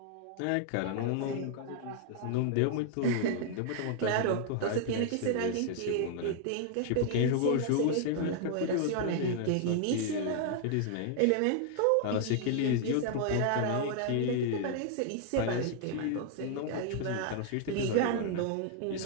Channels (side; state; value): both; different; correlation 0.00